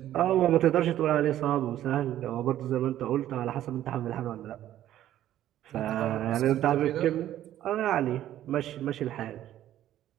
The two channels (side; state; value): left; quieter; 12.5 dB